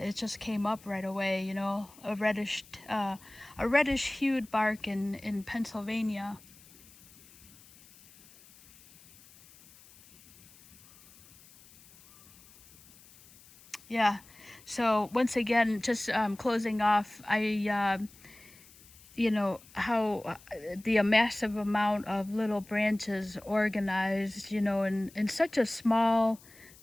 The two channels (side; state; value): left; noise; hiss, 24 dB below the sound